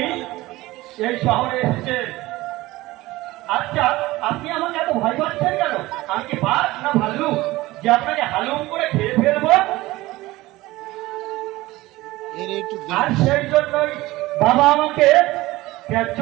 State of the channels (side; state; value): left; quieter; 18.8 dB